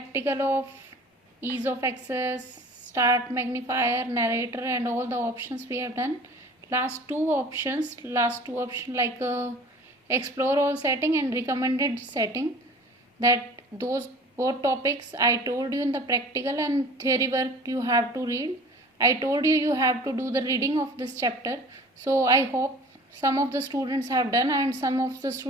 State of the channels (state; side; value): normal; both; correlation 0.45